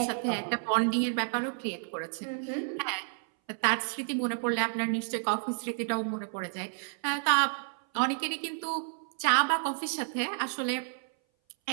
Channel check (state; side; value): silent; left; 57 dB below the other